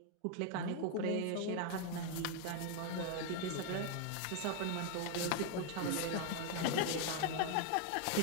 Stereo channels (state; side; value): different; both; correlation 0.01